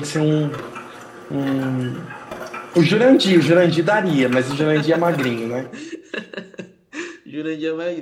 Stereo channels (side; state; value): both; identical; correlation 1.00